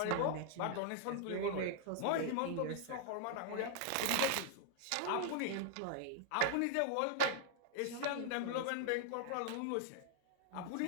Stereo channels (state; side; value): different; both; correlation -0.01